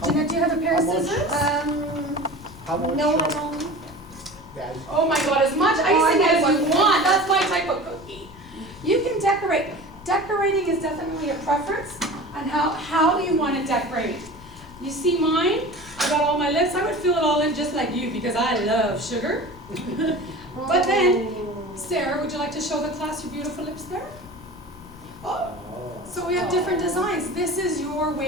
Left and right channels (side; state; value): left; noise; rumble, 19 dB below the sound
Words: Jeanette, do you have a pair of How much- scissors? How much? No, I don't. Yeah, Oh my God, as much icing as you want, that's my type of cookie. You can decorate. Decorating is definitely a preference on how do you want to decorate. You see mine? I got all my lips. I would fill it all in just like you because I love sugar. But then, Sarah, would you like to show the class your beautiful lips there? Oh, so we have different designs. This is your